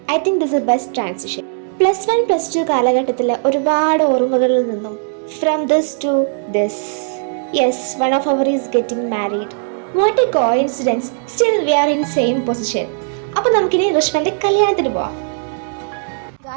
I think this a best transition. +1 +2 കാലഘട്ടത്തിലെ ഒരുപാട് ഓർമ്മകളിൽ നിന്നും from this to this. Yes, one of our is getting married. What a coincidence, still we are in same position. അപ്പോൾ നമുക്കിനി ഋഷ്വന്റെ കല്യാണത്തിന് പോവാം.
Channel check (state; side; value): silent; left; digital silence